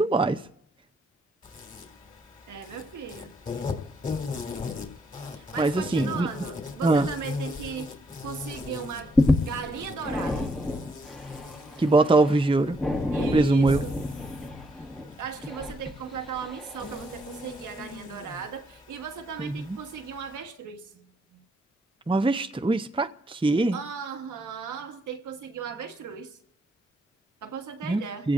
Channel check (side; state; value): both; normal; correlation 0.73